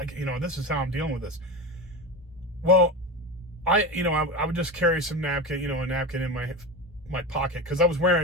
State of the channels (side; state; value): both; normal; correlation 0.24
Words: this is how I'm dealing with this. Well, I would just carry some napkin, a napkin in my pocket, because I was